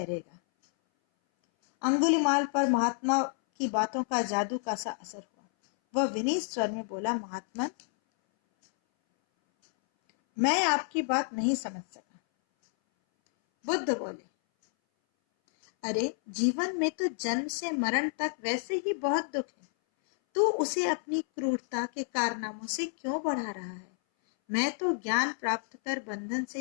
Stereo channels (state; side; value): silent; right; 58 dB below the other